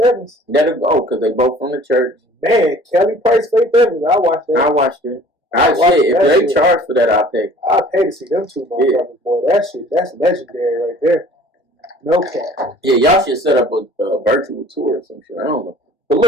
Evans. That'll go, because they both from the church. Man, Kelly Price, Faith Evans, I watched that. I watched it. If they charge for that, I'll pay. I'll pay to see them two motherfuckers, boy. That shit, that's legendary right there. No cap. Yeah, y'all should set up a virtual tour or some shit. I don't know. But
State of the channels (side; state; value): both; normal; correlation 0.50